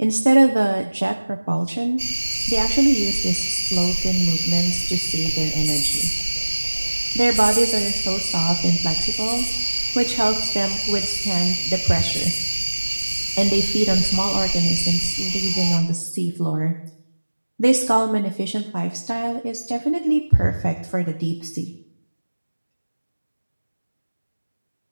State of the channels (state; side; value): inverted; both; correlation -1.00